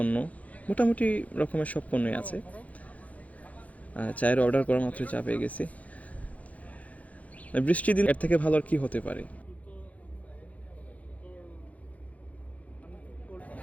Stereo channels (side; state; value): right; late; 0.069 ms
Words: মোটামুটি রকমের সব পণ্যই আছে। চায়ের অর্ডার করা মাত্র চা পেয়ে গেছি। বৃষ্টির দিন এর থেকে ভালো আর কি হতে পারে।